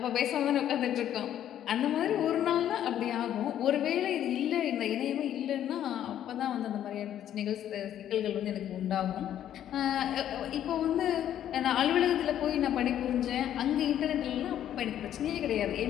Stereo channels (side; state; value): right; quieter; 10.9 dB